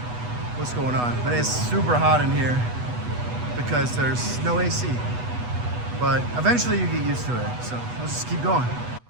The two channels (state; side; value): late; left; 8.1 ms